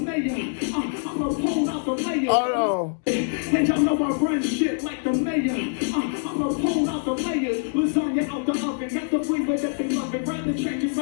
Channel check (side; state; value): right; silent; digital silence